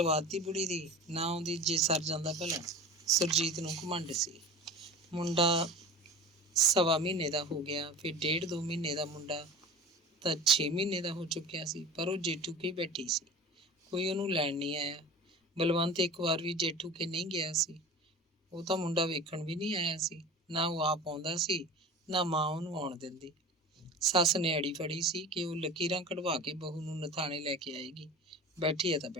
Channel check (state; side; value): normal; both; correlation 0.36